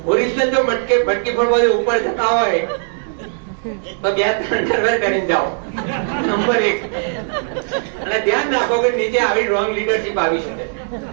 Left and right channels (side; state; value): left; silent; digital silence